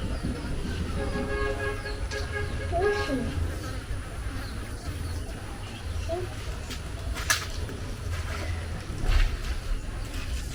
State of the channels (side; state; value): both; identical; correlation 1.00